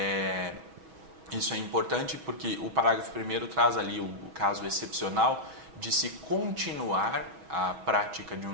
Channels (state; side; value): late; left; 6.2 ms